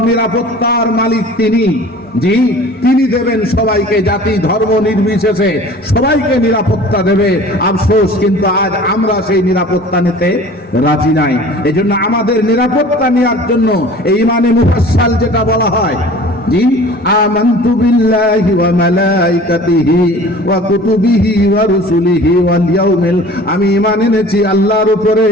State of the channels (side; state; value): both; normal; correlation 0.44